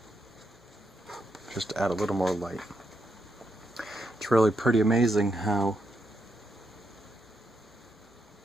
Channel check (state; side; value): normal; both; correlation 0.81